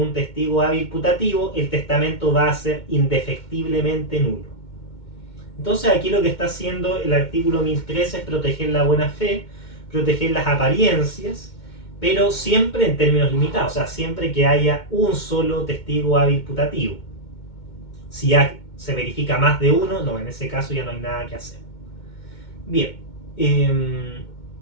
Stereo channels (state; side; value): late; right; 2.2 ms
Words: testigo hábil putativo, el testamento va a ser indefectiblemente nulo. Entonces aquí lo que está haciendo el artículo 1013 es proteger la buena fe, proteger las apariencias, pero siempre en términos limitados, o sea, siempre que haya un solo testigo hábil putativo. Si ya se verifica más de uno, no, en ese caso ya no hay nada que hacer. Bien.